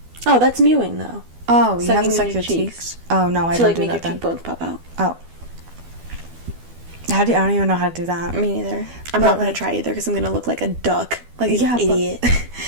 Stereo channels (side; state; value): left; late; 12 ms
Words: Oh, that's mewing, though. Oh, you have to suck your cheeks? Oh, no, I don't do that then. To, like, make your cheekbones pop out. Oh. I don't even know how to do that. Me neither. I'm not gonna try either because I'm gonna look like a duck, like an idiot.